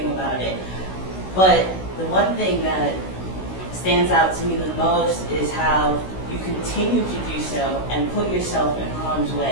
about it. But the one thing that stands out to me the most is how you continue to do so and put yourself in harm's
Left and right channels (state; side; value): late; right; 16 ms